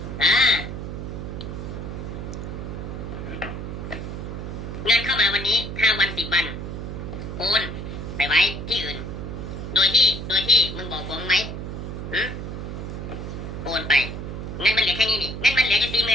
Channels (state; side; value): noise; right; hum, 6 dB below the sound